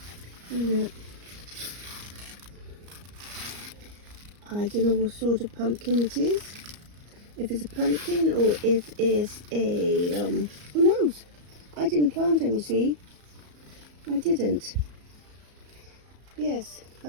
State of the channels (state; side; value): late; left; 34 ms